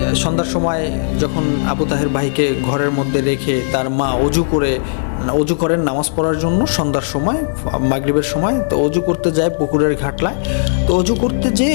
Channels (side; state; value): right; silent; digital silence